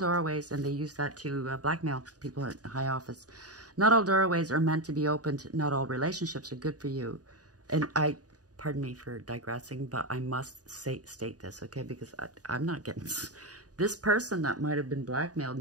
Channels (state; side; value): late; left; 0.68 ms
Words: and they use that to blackmail people at high office. Not all doorways are meant to be opened. Not all relationships are good for you. And pardon me for digressing, but I must state this, okay? Because I'm not getting this person that might have been blackmailed.